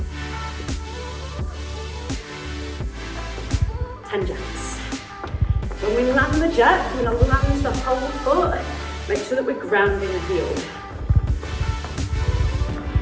10 jacks. When we land the jack, we're going to land the whole foot. Make sure that we're grounding the heel.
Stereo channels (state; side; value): identical; both; correlation 1.00